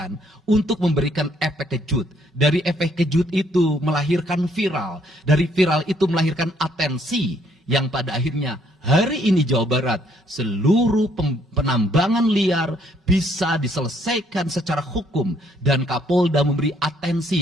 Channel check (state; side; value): normal; both; correlation 0.67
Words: untuk memberikan efek kejut. Dari efek kejut itu melahirkan viral. Dari viral itu melahirkan atensi. Yang pada akhirnya hari ini Jawa Barat seluruh penambangan liar bisa diselesaikan secara hukum dan Kapolda memberi atensi